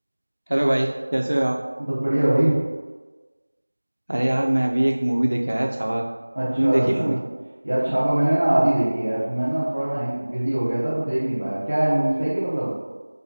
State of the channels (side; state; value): both; inverted; correlation -1.00